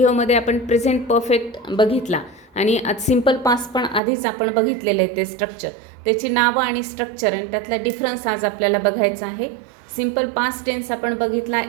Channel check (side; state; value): left; drops out; at 4.0 s